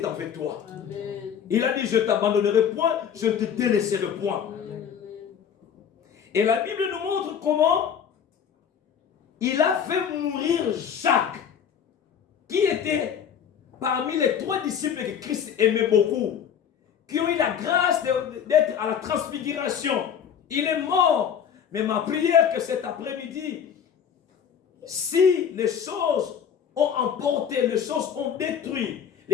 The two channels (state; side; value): quieter; right; 8.1 dB